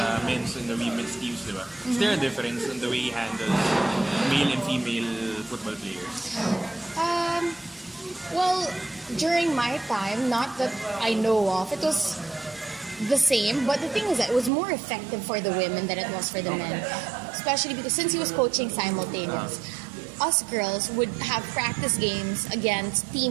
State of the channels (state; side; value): drops out; left; at 14.5 s